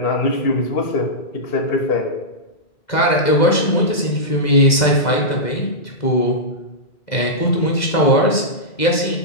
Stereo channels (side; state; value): right; late; 2.0 ms